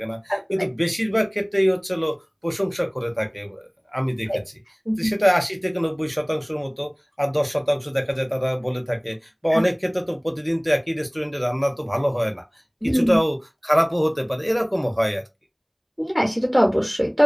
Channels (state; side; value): identical; both; correlation 1.00